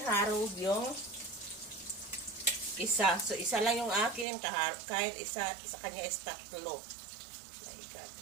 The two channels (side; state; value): left; drops out; at 4.2 s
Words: Harold yung isa. So, isa lang yung akin. Kahit isa sa kanya is tatlo. My God.